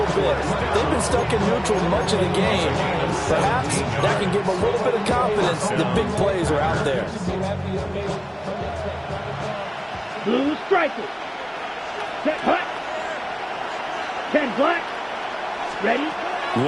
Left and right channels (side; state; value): both; identical; correlation 1.00